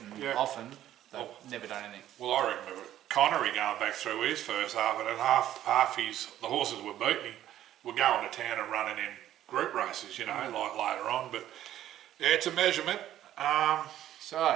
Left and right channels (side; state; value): left; quieter; 12.4 dB